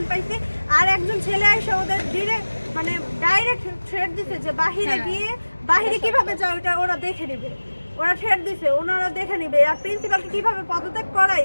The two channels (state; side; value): inverted; both; correlation -1.00